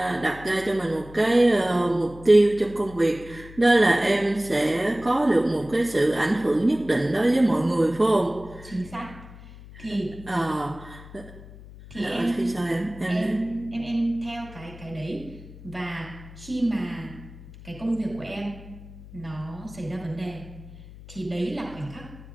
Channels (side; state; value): left; noise; hum, 17 dB below the sound